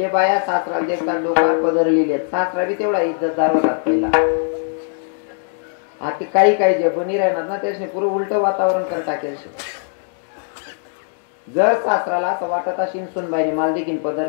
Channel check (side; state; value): right; silent; digital silence